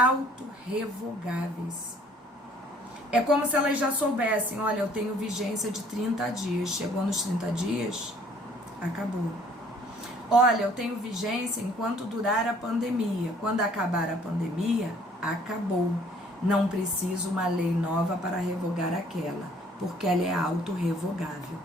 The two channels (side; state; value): both; normal; correlation 0.58